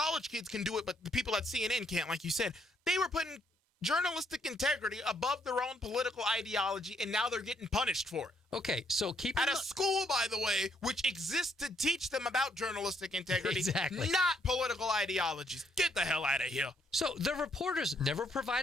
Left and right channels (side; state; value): both; normal; correlation 0.71